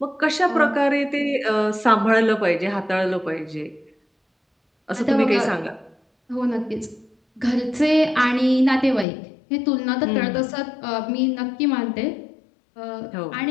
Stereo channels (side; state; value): right; drops out; at 9.1 s